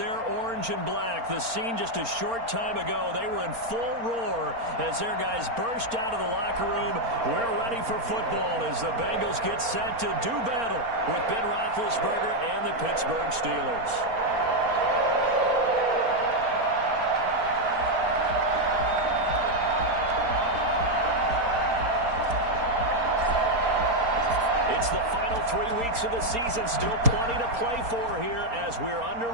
orange and black. The scene just a short time ago, they were in full roar as their guys burst out of the locker room. We're ready for football as the Bengals get set to do battle with Ben Roethlisberger and the Pittsburgh Steelers. It's the final 3 weeks of the season. Still plenty to play for here as we're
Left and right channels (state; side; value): late; left; 4.3 ms